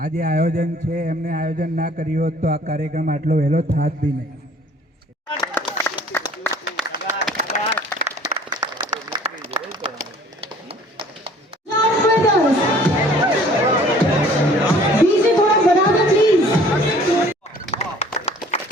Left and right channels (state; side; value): normal; both; correlation 0.53